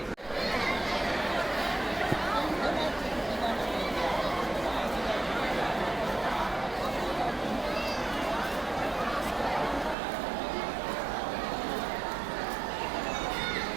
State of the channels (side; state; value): left; drops out; at 10.0 s